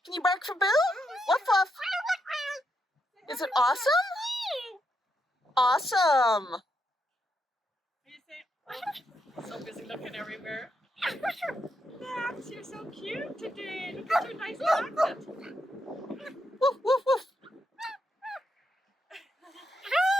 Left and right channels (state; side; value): normal; both; correlation 0.81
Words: Can you bark for Boo? Woof woof. Is it awesome? Awesome. What do you say? Oh, so busy looking everywhere. Max, you're so cute today. Look at your nice jacket. Woof woof woof.